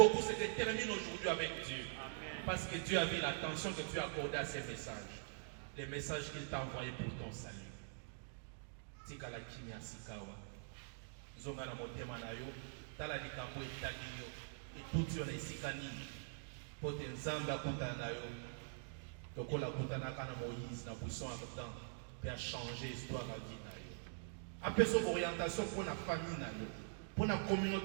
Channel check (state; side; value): silent; left; digital silence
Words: se termine aujourd'hui avec Dieu. Parce que Dieu a vu l'attention que tu as accordée à ces messages. Les messages qu'il t'a envoyés pour ton salut. Tikala kimia sikawa. Zonga na motema na yo, tala likambo etali yo, etuti yo na esika nini. Pote nzambe akutana na yo. Tokola kutanaka na Moïse na buisson ardent, puis a changé l'histoire à vie na yo. Apeso orientation pour la famille na yo, pour la